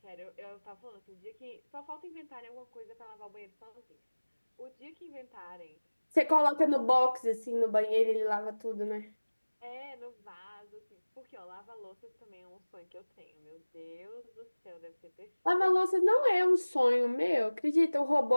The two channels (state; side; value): inverted; both; correlation -1.00